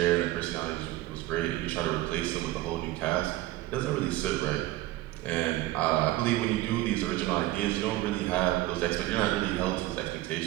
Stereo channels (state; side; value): quieter; left; 16.7 dB